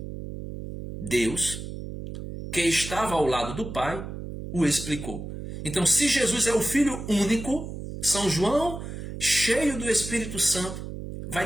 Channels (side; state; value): right; noise; hum, 9 dB below the sound